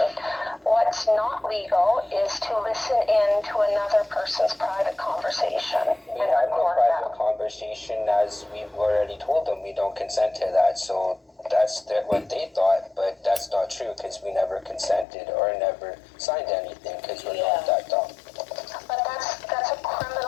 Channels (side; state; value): right; drops out; at 15.1 s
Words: What's not legal is to listen in to another person's private conversation and I have no record private that. conversation, as we've already told them we don't consent to that, so that's what they thought, but that's not true, because we never consented or never signed anything, because we're not that dumb. But that's a